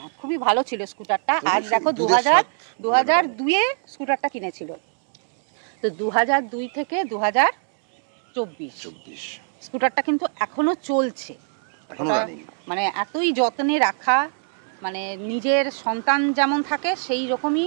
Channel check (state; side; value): silent; left; digital silence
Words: খুবই ভালো ছিল স্কুটারটা। আর দেখো 2002-এ স্কুটারটা কিনেছিল, তো 2002 থেকে 2024 স্কুটারটা কিন্তু এখনো চলছে। মানে এতই যত্নে রাখা, মানে নিজের সন্তান যেমন থাকে সেই রকমই